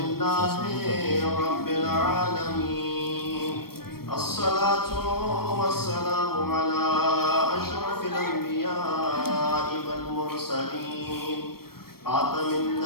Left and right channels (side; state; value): right; late; 0.94 ms